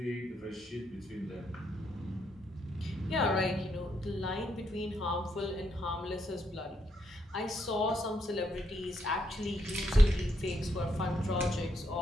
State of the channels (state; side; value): normal; both; correlation 0.77